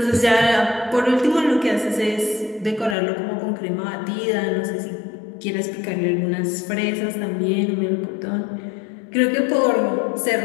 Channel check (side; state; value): right; drops out; at 3.0 s